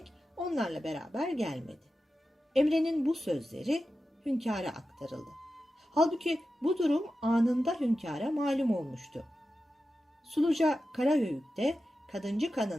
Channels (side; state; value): both; normal; correlation 0.92